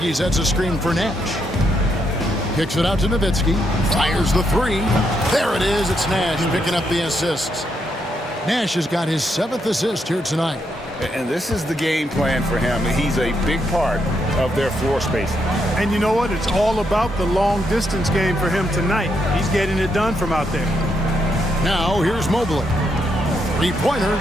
sets a screen for Nash. Kicks it out to Nowitzki. Fires the 3. There it is. It's Nash picking up the assists. Nash has got his 7th assist here tonight. And this is the game plan for him. He's a big part of their floor spacing. And you know what? It's all about the long distance game for him tonight. He's getting it done from out there. Now here's Mobley. 3-pointer.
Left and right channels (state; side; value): normal; both; correlation 0.78